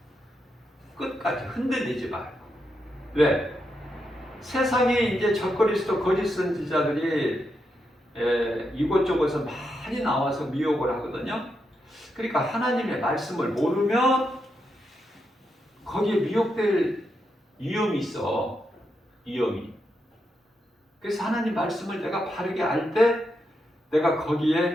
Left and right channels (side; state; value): both; normal; correlation 0.84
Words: 끝까지 흔들리지 말고. 왜? 세상에 이제 적그리스도 거짓 선지자들이 이곳저곳에서 많이 나와서 미혹을 하거든요. 그러니까 하나님의 말씀을 모르면 거기에 미혹될 위험이 있어. 위험이. 그래서 하나님 말씀을 내가 바르게 알 때 내가